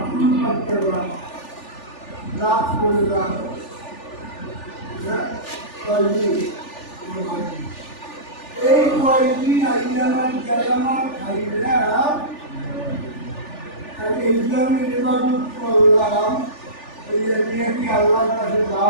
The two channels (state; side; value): late; right; 3.4 ms